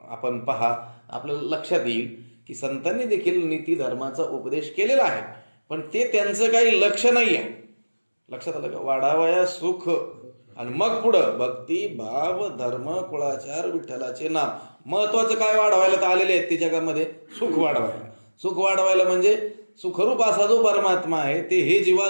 आपण पहा, आपल्याला लक्षात येईल की संतांनी देखील नीती धर्माचा उपदेश केलेला आहे, पण ते त्यांचं काही लक्ष नाही आहे. लक्षात आलं का? वाढावया सुख, आणि मग पुढं भक्ती, भाव, धर्म, कुळाचार, विठ्ठलाचे नाम. महत्वाचं काय वाढवायला तर आलेले आहेत ते जगामध्ये? सुख वाढवायला. सुख वाढवायला म्हणजे सुखरूप असा जो परमात्मा आहे ते हे जीवा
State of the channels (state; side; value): inverted; both; correlation -1.00